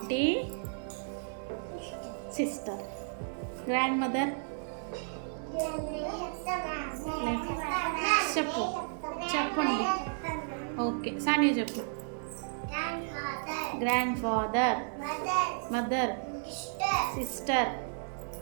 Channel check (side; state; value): left; silent; digital silence